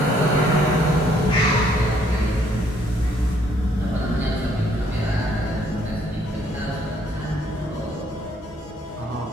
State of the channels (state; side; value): normal; both; correlation 0.66